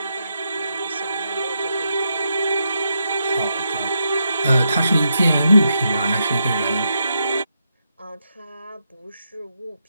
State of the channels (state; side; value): inverted; both; correlation -0.82